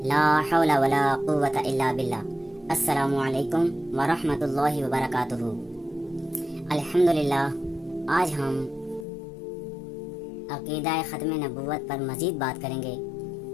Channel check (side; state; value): right; drops out; at 9.1 s